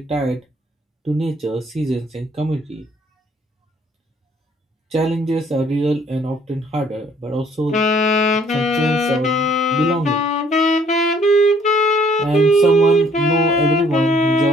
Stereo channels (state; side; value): normal; both; correlation 0.61